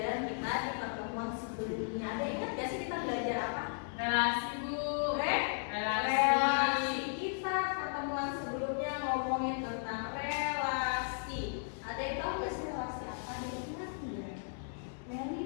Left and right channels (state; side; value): silent; right; digital silence